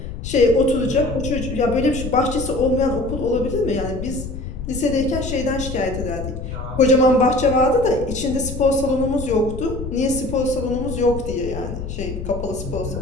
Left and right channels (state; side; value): noise; left; rumble, 8 dB below the sound